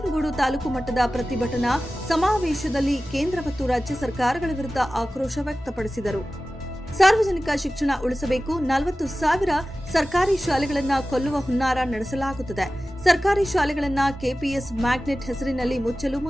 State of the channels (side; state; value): both; normal; correlation 0.96